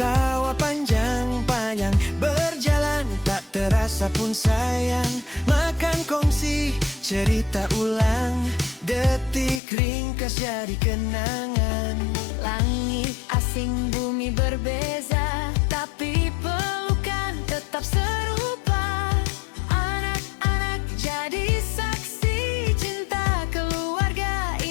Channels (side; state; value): right; drops out; at 9.6 s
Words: panjang-panjang, berjalan tak terasa pun sayang. Makan kongsi, cerita ulang, detik ringkas jadi kenangan. Langit asing, bumi berbeza, tapi pelukan tetap serupa. Anak-anak jadi saksi, cinta keluarga